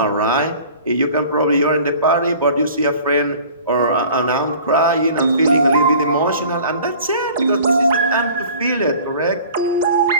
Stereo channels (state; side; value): inverted; both; correlation -0.46